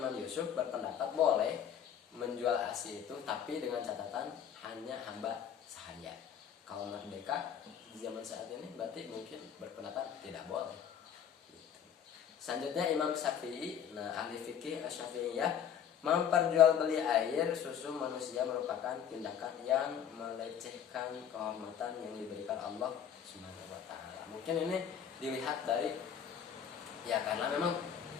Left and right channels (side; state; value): right; quieter; 8.6 dB